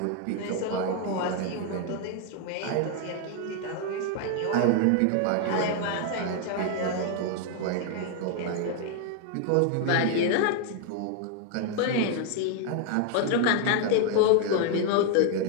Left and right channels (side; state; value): both; different; correlation 0.00